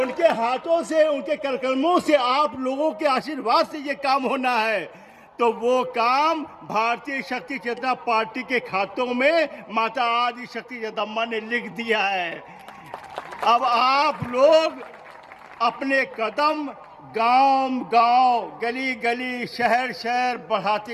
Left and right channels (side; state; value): both; identical; correlation 1.00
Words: हाथों से, उनके करकर्मों से, आप लोगों के आशीर्वाद से ये काम होना है। तो वो काम भारतीय शक्ति चेतना पार्टी के खातों में माता आदि शक्ति जगदम्बा ने लिख दिया है। अब आप लोग अपने कदम गांव-गांव, गली-गली, शहर-शहर